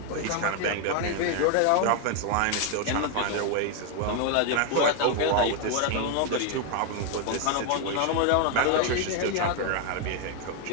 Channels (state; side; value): different; both; correlation 0.01